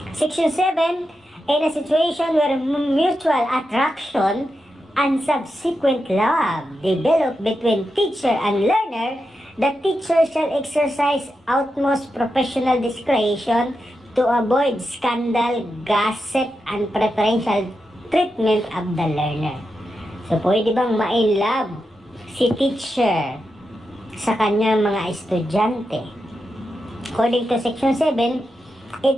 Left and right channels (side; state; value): both; normal; correlation 0.88